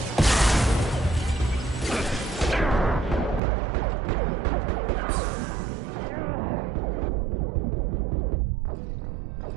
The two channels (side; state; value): left; drops out; at 3.4 s